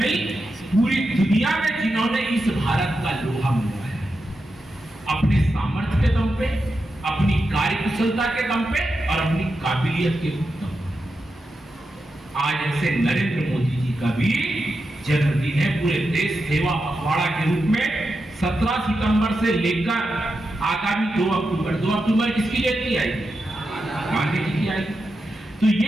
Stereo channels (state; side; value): normal; both; correlation 0.88